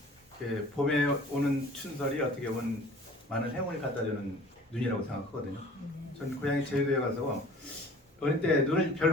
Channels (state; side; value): normal; both; correlation 0.47